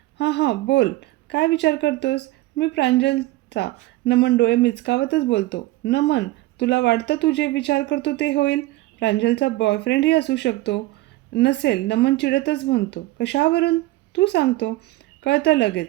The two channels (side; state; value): left; quieter; 18.1 dB